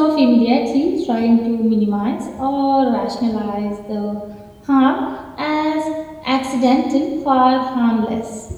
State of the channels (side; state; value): both; identical; correlation 1.00